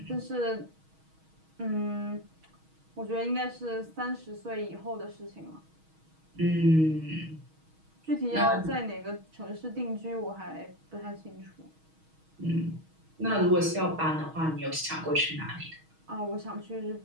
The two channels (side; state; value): left; late; 6.3 ms